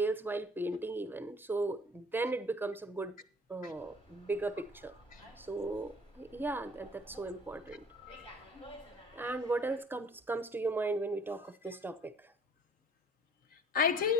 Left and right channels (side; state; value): both; normal; correlation 0.52